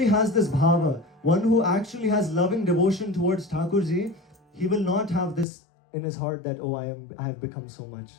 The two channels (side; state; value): right; drops out; at 5.5 s